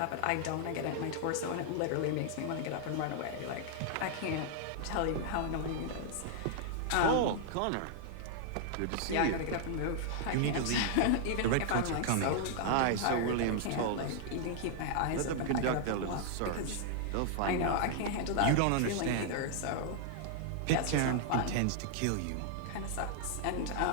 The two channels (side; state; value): both; different; correlation -0.01